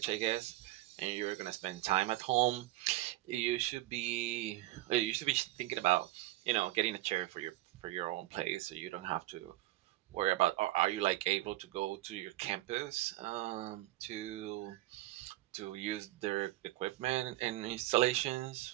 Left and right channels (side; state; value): left; quieter; 17.0 dB